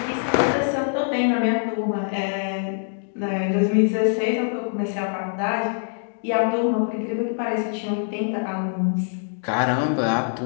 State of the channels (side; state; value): right; silent; digital silence